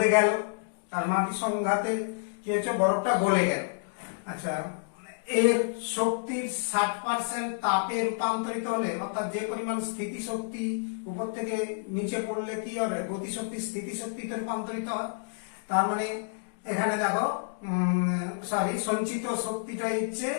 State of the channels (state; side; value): silent; right; digital silence